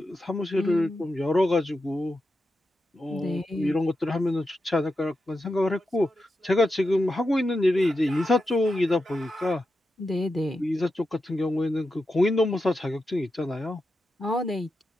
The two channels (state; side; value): normal; both; correlation 0.88